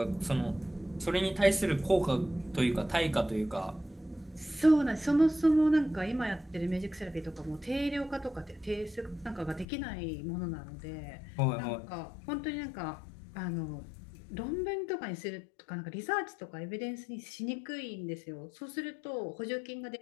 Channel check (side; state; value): right; drops out; at 9.7 s